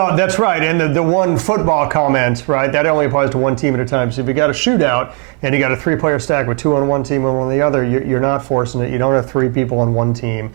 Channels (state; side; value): quieter; left; 37.9 dB